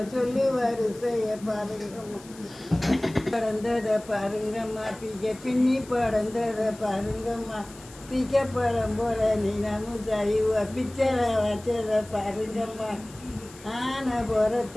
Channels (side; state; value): left; noise; hiss, 21 dB below the sound